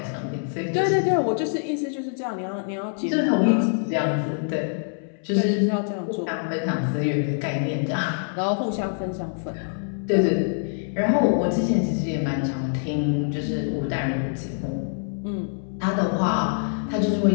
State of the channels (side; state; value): right; silent; 62 dB below the other